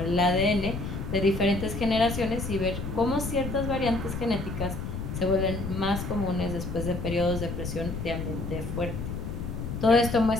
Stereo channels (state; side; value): noise; left; rumble, 5 dB below the sound